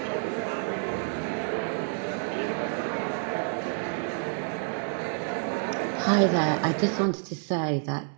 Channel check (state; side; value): silent; left; 59 dB below the other